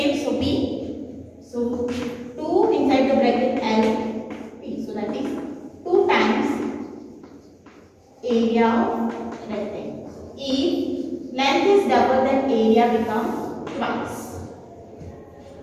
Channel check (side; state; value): both; identical; correlation 1.00